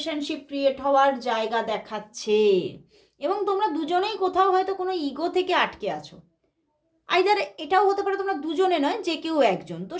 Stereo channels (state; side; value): identical; both; correlation 1.00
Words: ক্রিয়েট হওয়ার জায়গা দেখাচ্ছে। এবং তোমরা দুজনেই কোথাও হয়তো কোনো ইগো থেকে আটকে আছো, আইদার এটাও হতে পারে তোমরা দুজনে নয়, যে কেউ একজন, তো